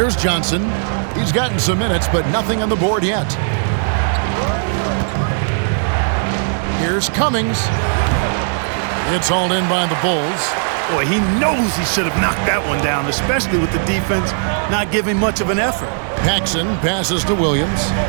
Johnson. He's gotten some minutes, but nothing on the board yet. Here's Cummings. It's hauled in by the Bulls. Boy, he knows he should have knocked that one down, especially with the defense not giving much of an effort. Paxson passes to Williams.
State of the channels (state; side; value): silent; left; 67 dB below the other